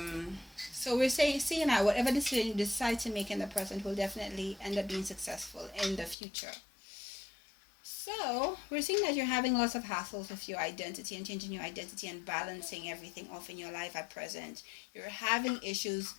so we're seeing that whatever decision you decide to make in the present will definitely end up being successful in the future. So we're seeing that you're having lots of hassles with your identity and changing your identity and balancing everything off in your life at present. You're having issues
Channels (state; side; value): drops out; right; at 6.2 s